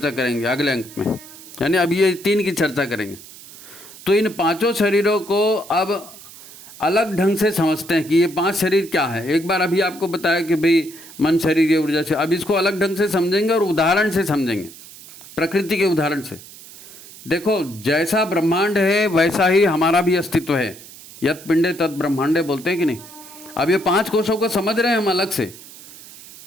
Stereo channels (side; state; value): right; noise; hiss, 18 dB below the sound